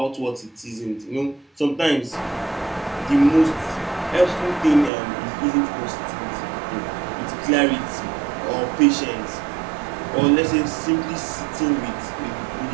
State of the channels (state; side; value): drops out; left; at 4.9 s